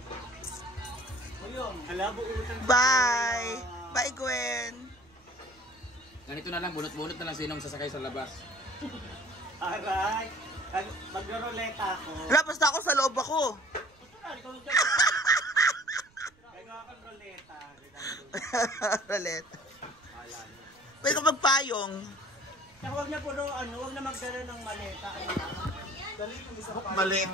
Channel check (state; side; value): noise; right; rumble, 29 dB below the sound